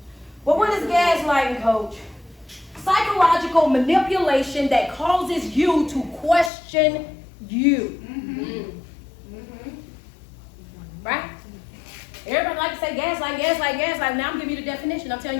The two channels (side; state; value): right; drops out; at 6.5 s